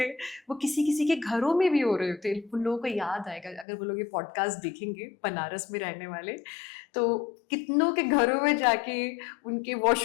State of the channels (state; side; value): drops out; right; at 3.7 s